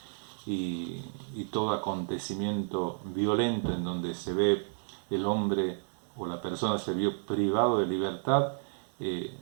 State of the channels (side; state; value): left; silent; digital silence